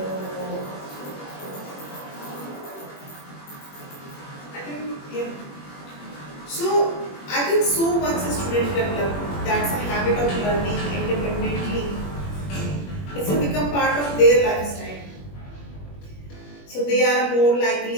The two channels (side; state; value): right; late; 21 ms